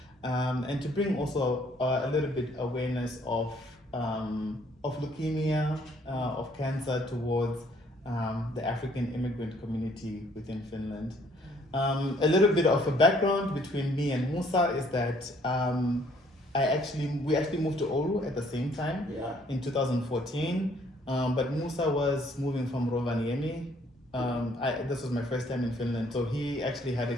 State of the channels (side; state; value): both; normal; correlation 0.63